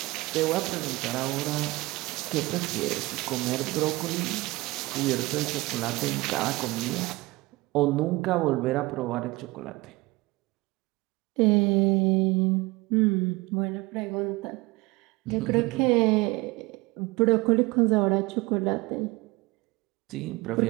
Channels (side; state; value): left; quieter; 21.8 dB